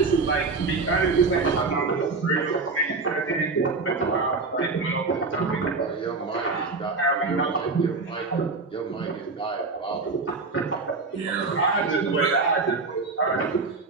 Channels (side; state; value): left; quieter; 4.1 dB